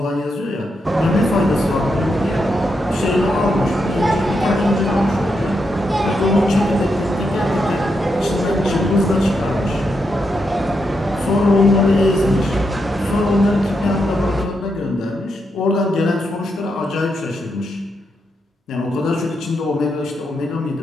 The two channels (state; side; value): normal; both; correlation 0.83